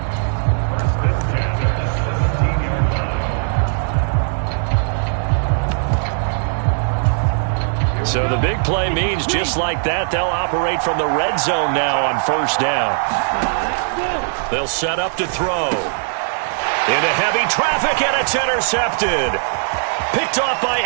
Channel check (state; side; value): silent; left; digital silence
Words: So the big play means just like that, they'll operate from the red zone now on first down. They'll set up to throw. Into heavy traffic, and it's intercepted. Picked off by